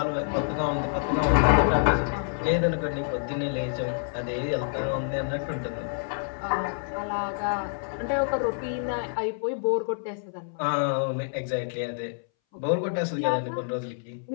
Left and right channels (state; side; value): silent; right; 60 dB below the other